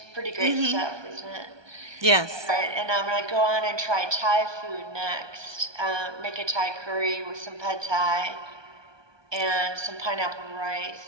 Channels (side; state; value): left; late; 1.2 ms